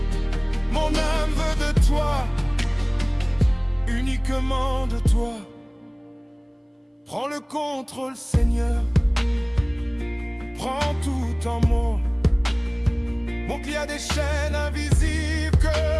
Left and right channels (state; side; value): identical; both; correlation 1.00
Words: Mon âme veut de toi, uniquement de toi. Prends le contrôle, Seigneur. Prends tout en moi. Mon qu'il y a des chaînes invisibles que